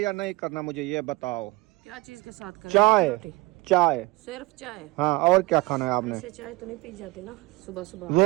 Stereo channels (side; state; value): left; quieter; 22.9 dB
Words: या नहीं करना, मुझे ये बताओ। क्या चीज के साथ करें? चाय। रोटी? चाय, सिर्फ चाय? हाँ, और क्या खाना है आपने? ऐसे चाय तो नहीं पी जाती ना सुबह सुबह।